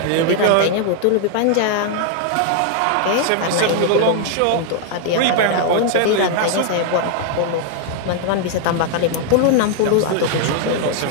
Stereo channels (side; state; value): both; different; correlation 0.00